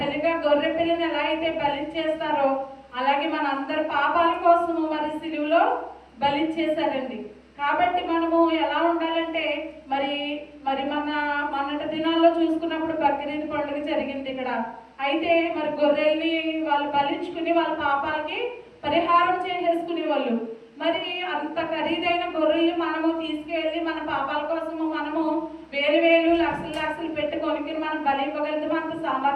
గొర్రె పిల్లని ఎలా అయితే బలి చేస్తారో అలాగే మన అందరి పాపాల కోసము మరి సిలువలో బలి చేశారండి. కాబట్టి మనము ఎలా ఉండాలంటే మరి మొన్నటి దినాల్లో చూసుకున్నప్పుడు బక్రీద్ పండుగ జరిగింది ఇక్కడ. అయితే మరి గొర్రెల్ని వాళ్ళు బలించుకుని వాళ్ళ పాపాలకి పరిహారం చేసేసుకునే వాళ్ళు. మరి అంత ఖరీదైన గొర్రెలు మనము తీసుకెళ్ళి మన పాపాల కోసము మనము వేలు లక్షలు పెట్టి కొనుక్కుని మనం బలి ఇవ్వగలుగుతాం. అంత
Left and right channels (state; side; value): identical; both; correlation 1.00